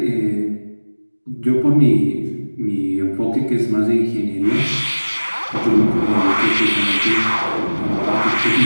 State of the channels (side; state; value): both; inverted; correlation -1.00